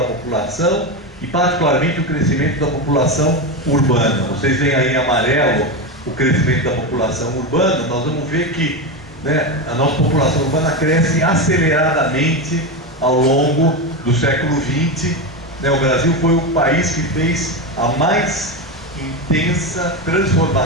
população e particularmente o crescimento da população urbana. Vocês veem aí em amarelo o crescimento da população urbana. Nós vamos ver que, né, a nossa população urbana cresce aceleradamente ao longo do século XX. Né, o Brasil foi o país que fez a mais intensa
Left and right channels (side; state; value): both; normal; correlation 0.16